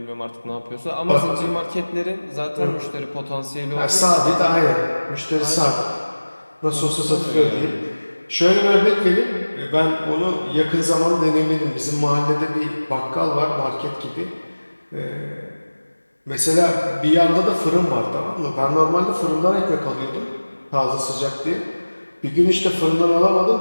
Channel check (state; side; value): inverted; both; correlation -1.00